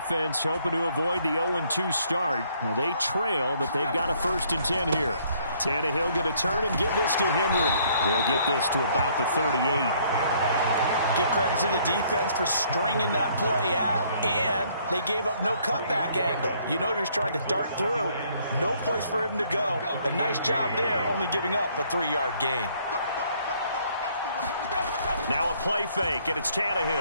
hoping to avoid the 0-2 start. Now they trail, but they've got a 1st and 10 here. Tannehill going to turn and give this to Henry. They'll get this to about the 38. Give credit to the defense for stringing that play out, and they gave up no cutback angle. You know he was trying to dart through. No place for him to go. A nice job there, only giving up a 3-yard gain. Now a play fake, and it's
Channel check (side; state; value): both; inverted; correlation -0.64